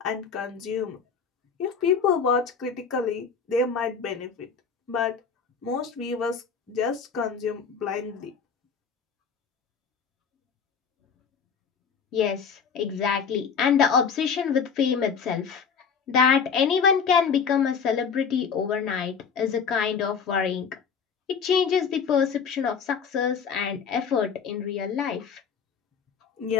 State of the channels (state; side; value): quieter; right; 6.2 dB